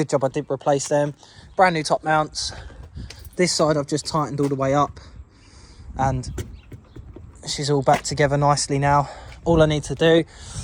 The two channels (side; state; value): both; identical; correlation 1.00